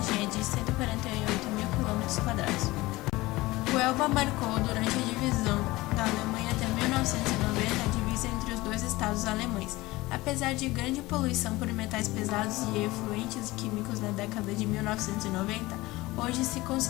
é de 148.000 km². O Elba marcou, durante a divisão da Alemanha até 1990, a divisa entre os dois estados alemães. Apesar de grande poluição por metais pesados e efluentes químicos na década de 1990, hoje se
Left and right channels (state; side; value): quieter; right; 19.9 dB